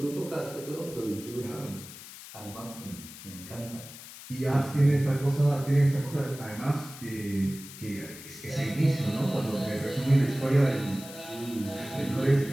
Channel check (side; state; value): left; noise; hiss, 15 dB below the sound